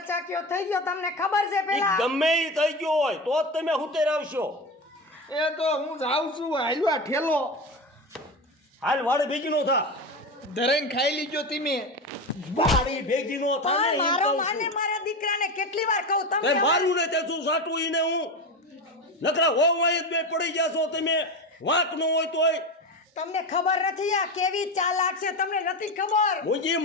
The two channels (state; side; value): normal; both; correlation 0.21